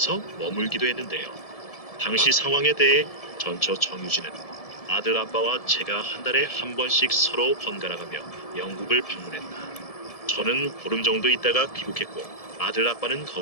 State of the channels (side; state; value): right; late; 1.7 ms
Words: 머물기도 했는데요. 당시 상황에 대해 전처 정유진은 아들 아빠와 제가 한 달에 한 번씩 서로 번갈아가며 영국을 방문했다. 저는 보름 정도 있다가 귀국했고 아들 아빠는